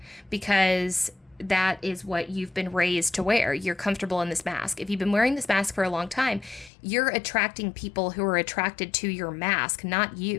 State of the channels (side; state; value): right; drops out; at 6.7 s